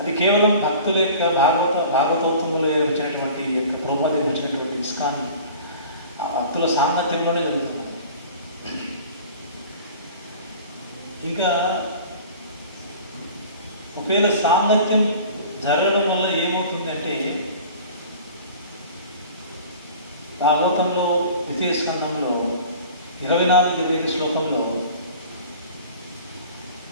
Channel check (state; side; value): inverted; both; correlation -0.42